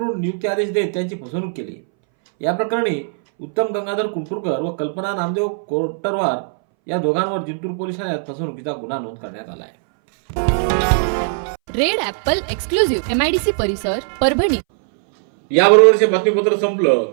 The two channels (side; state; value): left; silent; 63 dB below the other